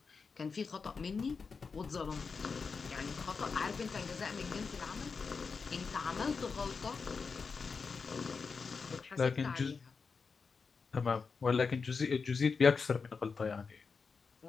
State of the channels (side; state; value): right; quieter; 5.1 dB